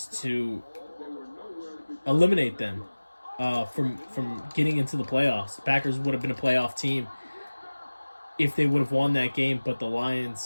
to eliminate them from getting into the playoffs. The Packers would have been a playoff team if they would have won that game, but the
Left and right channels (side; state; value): both; inverted; correlation -1.00